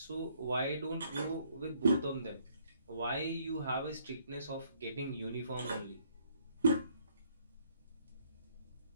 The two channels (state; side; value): inverted; both; correlation -0.67